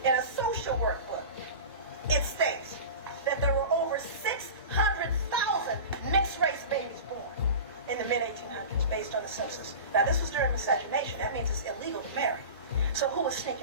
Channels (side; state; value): both; inverted; correlation -0.33